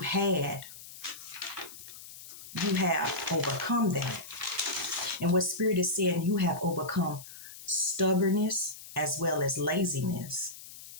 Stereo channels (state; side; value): noise; left; hiss, 15 dB below the sound